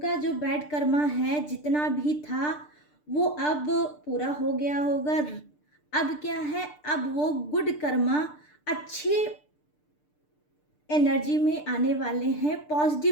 जो बैड कर्मा है जितना भी था वो अब पूरा हो गया होगा। अब क्या है, अब वो गुड कर्मा अच्छे एनर्जी में आने वाले हैं,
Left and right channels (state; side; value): late; right; 6.7 ms